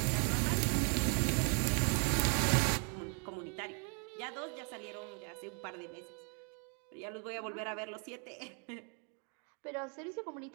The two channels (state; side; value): quieter; left; 38.9 dB